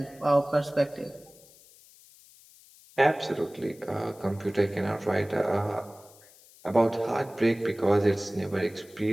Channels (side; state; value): left; noise; hiss, 25 dB below the sound